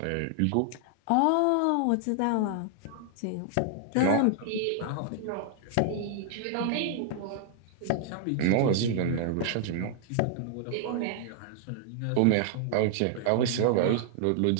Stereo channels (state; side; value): different; both; correlation 0.00